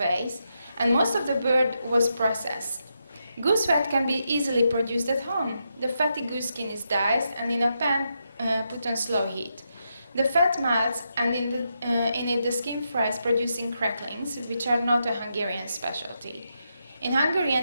and most of the bird was processed. Goose fat can be easily produced at home. The fatty goose skin is diced and in a pan put on slow heat. The fat melts, and in it the skin fries, producing cracklings, which are not a Hungarian specialty. In Hungary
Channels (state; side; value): inverted; both; correlation -0.83